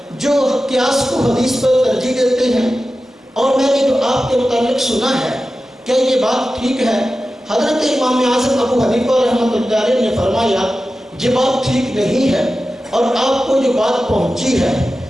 جو قیاس کو حدیث پر ترجیح دیتے ہیں، اور میں نے جو آپ کے متعلق سنا ہے کیا یہ بات ٹھیک ہے؟ حضرت امام اعظم ابو حنیفہ رحمۃ اللہ علیہ نے فرمایا یہ بات ٹھیک نہیں ہے، اور آپ کو جو بات پہنچی ہے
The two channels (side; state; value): both; normal; correlation 0.93